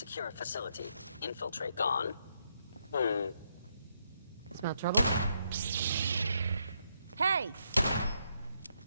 facility. Infiltrate. Gone. Smell trouble? Hey!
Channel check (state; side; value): inverted; both; correlation -0.78